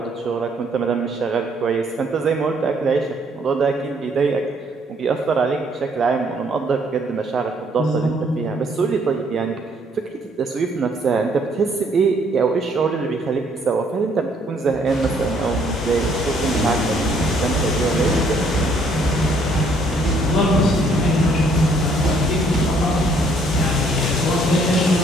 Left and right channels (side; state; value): both; normal; correlation 0.65